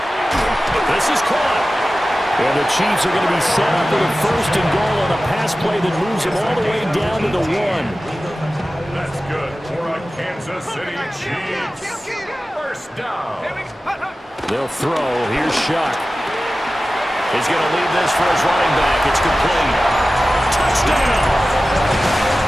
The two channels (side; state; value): both; normal; correlation 0.95